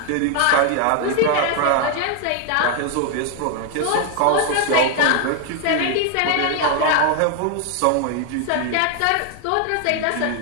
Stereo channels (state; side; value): different; both; correlation 0.00